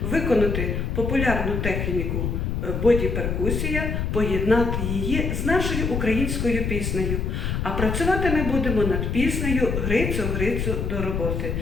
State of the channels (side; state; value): left; noise; rumble, 1 dB below the sound